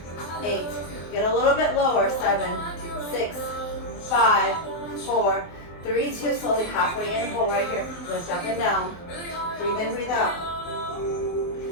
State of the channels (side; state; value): right; late; 24 ms